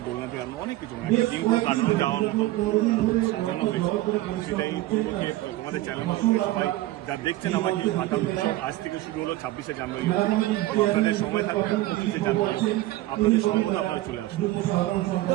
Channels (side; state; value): left; quieter; 17.0 dB